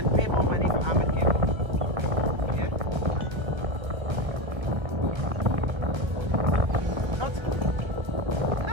pay more money for armored cable? Yeah?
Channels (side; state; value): left; late; 1.3 ms